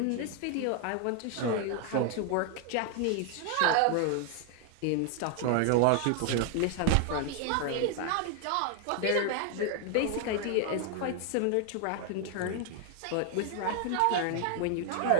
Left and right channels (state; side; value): different; both; correlation 0.00